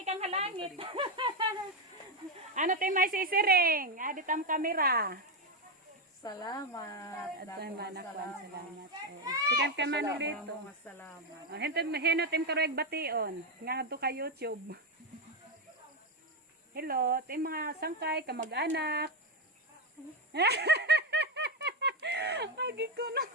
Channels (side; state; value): both; normal; correlation 0.07